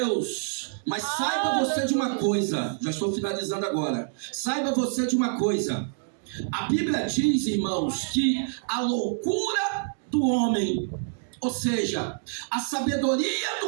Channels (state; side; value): silent; left; digital silence